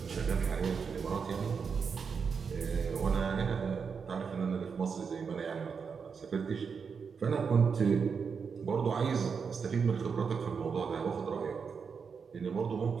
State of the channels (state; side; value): quieter; left; 5.9 dB